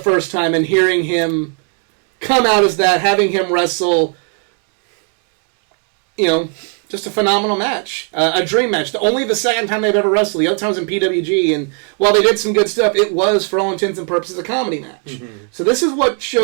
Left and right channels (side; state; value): left; quieter; 38.3 dB